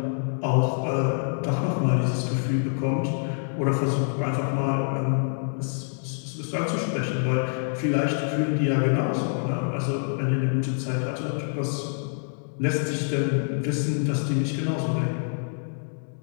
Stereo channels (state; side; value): silent; right; 61 dB below the other